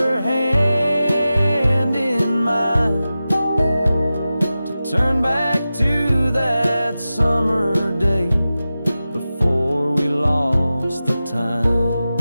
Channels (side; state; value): both; inverted; correlation -0.94